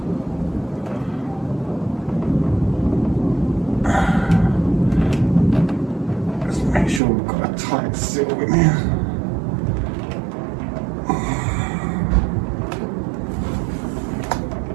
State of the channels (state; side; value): drops out; left; at 7.0 s